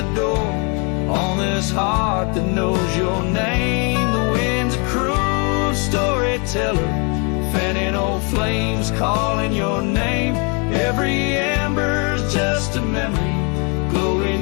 door on this heart that knows your name. The wind's a cruel storyteller, fanning old flames calling your name. Every ember's just a memory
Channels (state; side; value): quieter; right; 34.4 dB